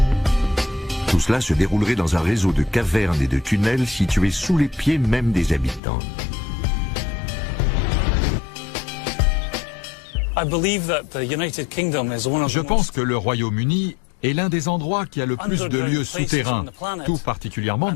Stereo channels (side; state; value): right; drops out; at 5.8 s